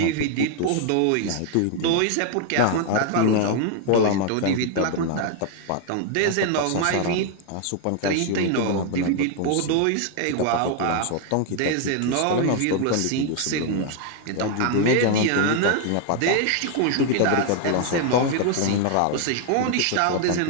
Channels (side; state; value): both; different; correlation 0.00